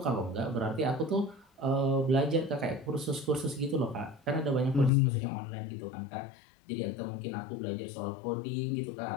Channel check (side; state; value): right; drops out; at 4.9 s